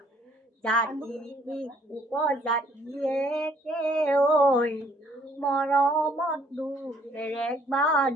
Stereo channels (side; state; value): both; normal; correlation 0.63